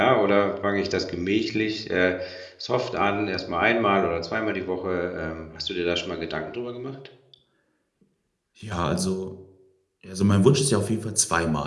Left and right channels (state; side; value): identical; both; correlation 1.00